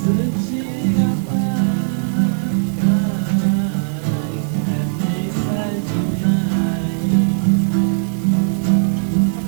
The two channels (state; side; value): silent; left; digital silence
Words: nunca poderia ser um espaço que eles iriam falar, a gente quer acabar com as escolas públicas. Eles não teriam coragem e sequer saco para fazer isso no momento. Por isso que eles têm que começar a comer todas as vezes pelas beiradas. Só